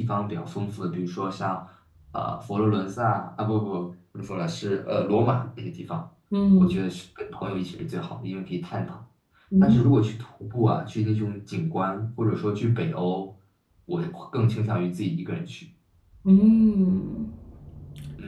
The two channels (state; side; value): identical; both; correlation 1.00